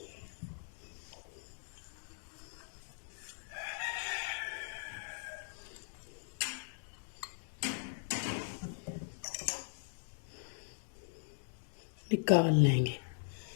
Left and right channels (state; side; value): silent; right; digital silence